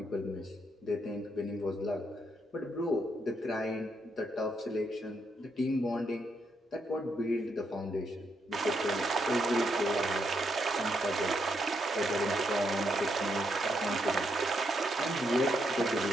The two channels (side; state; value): both; normal; correlation 0.78